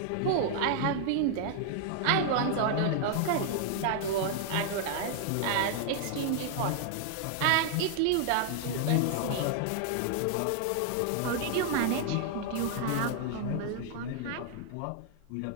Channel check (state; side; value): different; both; correlation 0.00